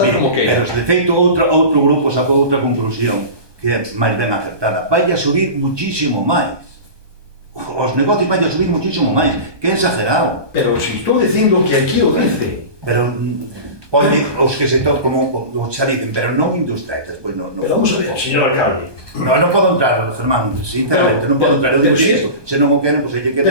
como que... Pero de feito outro grupo sacou outra conclusión que é máis ben acertada. Vai a subir muchísimo máis. Os negocios vai a subir muchísimo máis. Que é exagerado. Pero si estou dicindo que aquí o dice. Pero pode os que se tocan como xa dicen, pero non industriais, despois non... Pero vamos a ver, señor alcalde. Non podo entrar, Germán, sinceramente, non podo entrar. Eu digo isto, se non o queren, pois aí que queda.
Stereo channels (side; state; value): left; late; 1.2 ms